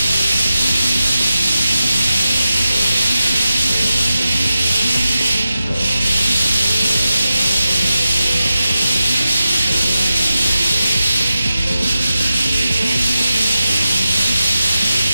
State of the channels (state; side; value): inverted; both; correlation -0.92